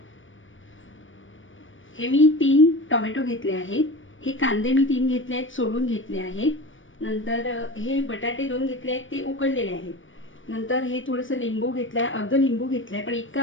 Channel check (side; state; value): right; late; 0.57 ms